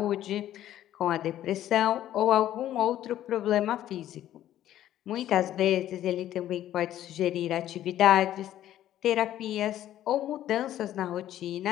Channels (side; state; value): right; quieter; 12.4 dB